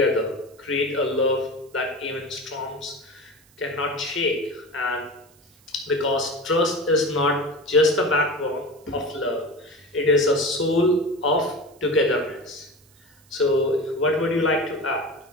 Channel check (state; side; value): noise; right; hiss, 30 dB below the sound